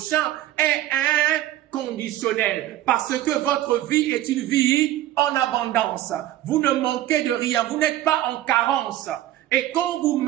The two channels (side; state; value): left; quieter; 14.0 dB